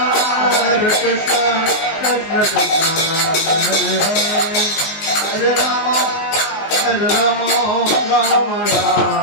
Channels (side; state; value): right; late; 19 ms